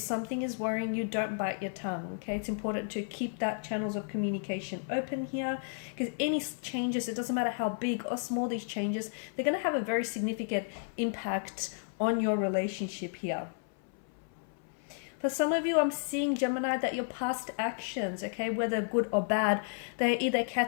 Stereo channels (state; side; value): silent; right; 56 dB below the other